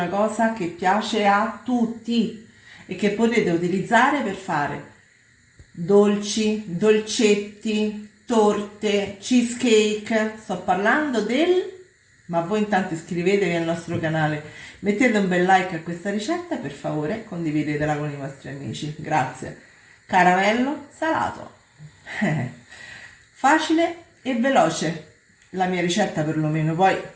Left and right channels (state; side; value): identical; both; correlation 1.00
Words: cosa che piace a tutti e che potete utilizzare per fare dolci, dolcetti, torte, cheesecake. Sto parlando del... Ma voi intanto iscrivetevi al nostro canale, mettete un bel like a questa ricetta e per favore condividetela con i vostri amici. Grazie. Caramello salato. Facile e veloce la mia ricetta perlomeno, poi